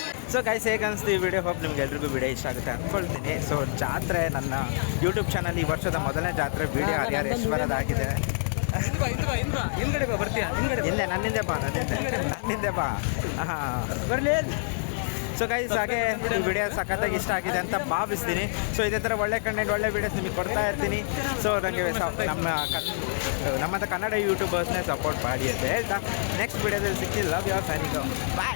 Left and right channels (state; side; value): silent; right; digital silence